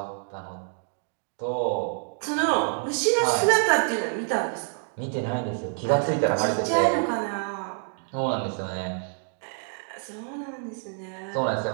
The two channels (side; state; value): left; silent; 60 dB below the other